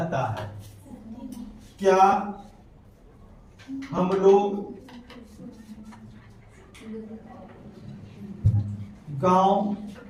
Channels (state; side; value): identical; both; correlation 1.00